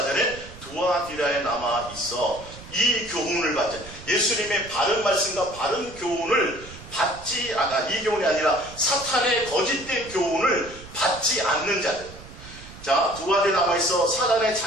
두아디라에 남아 있어 이 교훈을 받자. 예수님의 바른 말씀과 바른 교훈을 받지 않아. 이 교훈이 아니라 사탄의 거짓된 교훈을 받지 않는 자들. 자, 두아디라에 남아있어 사단의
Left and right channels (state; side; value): noise; right; rumble, 17 dB below the sound